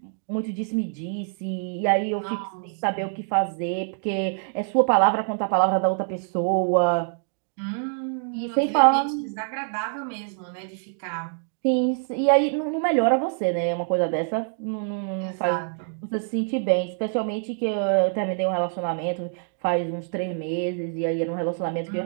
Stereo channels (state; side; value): silent; left; 62 dB below the other